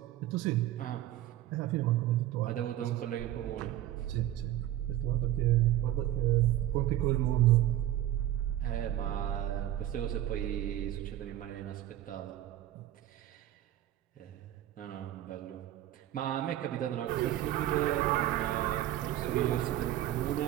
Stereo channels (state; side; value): quieter; left; 13.2 dB